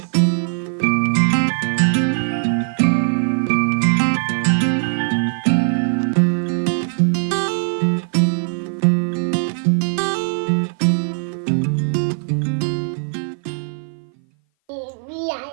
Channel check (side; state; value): left; silent; 57 dB below the other